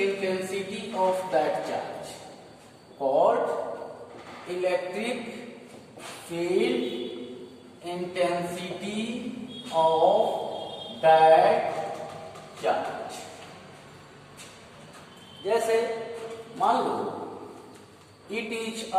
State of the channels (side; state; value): both; identical; correlation 1.00